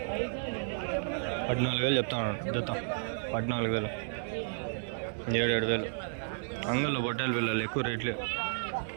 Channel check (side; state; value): left; silent; 56 dB below the other